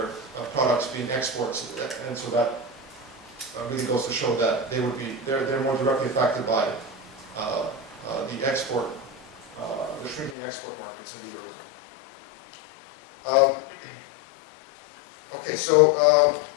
products being exports, and so that really goes to show that they're more directly affected by the export, the shrinking export markets in the eurozone. Okay, so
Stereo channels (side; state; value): right; drops out; at 10.4 s